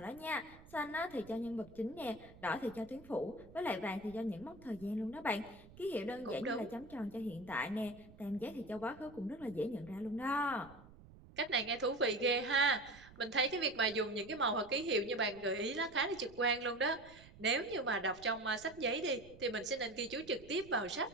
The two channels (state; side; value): noise; right; rumble, 21 dB below the sound